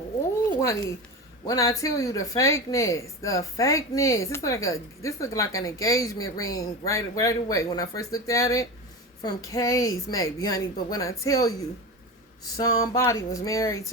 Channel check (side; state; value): both; normal; correlation 0.25